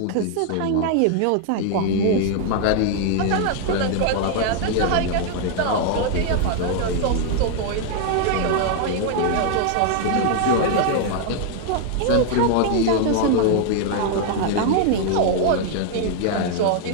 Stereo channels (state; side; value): different; both; correlation 0.00